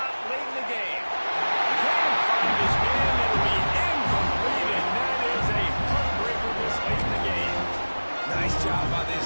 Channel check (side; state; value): both; inverted; correlation -1.00